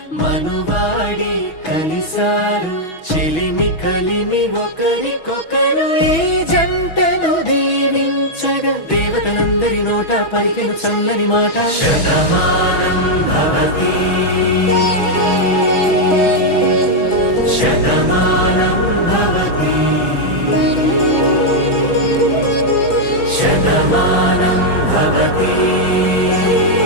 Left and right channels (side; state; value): right; late; 6.2 ms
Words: మనువాడి కలిసారు చెలిమి కలిమి ఒకరికొకరు ఈ జంటను దీవించగా దేవతలందరి నోట పలికిన చల్లని మాట శతమానం భవతి శతమానం భవతి శతమానం భవతి